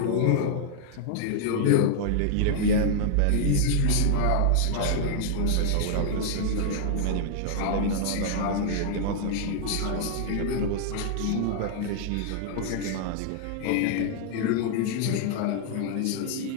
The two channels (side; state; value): both; different; correlation -0.01